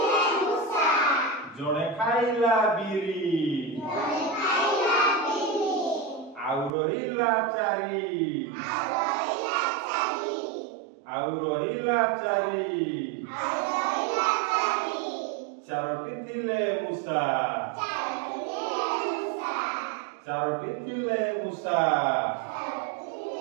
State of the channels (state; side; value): drops out; left; at 6.7 s